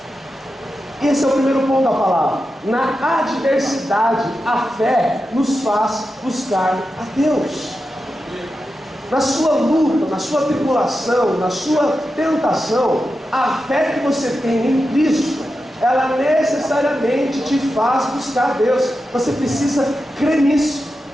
Esse é o primeiro ponto da palavra. Na adversidade, a fé nos faz buscar a Deus. Na sua luta, na sua tribulação, na sua tentação, a fé que você tem em Cristo, ela necessariamente te faz buscar a Deus. Você precisa crer nisso,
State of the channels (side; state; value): both; normal; correlation 0.90